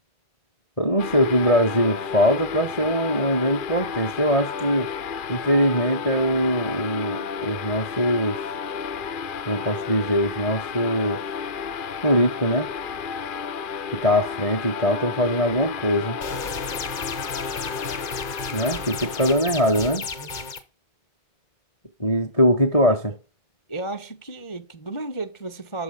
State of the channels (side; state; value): right; late; 2.1 ms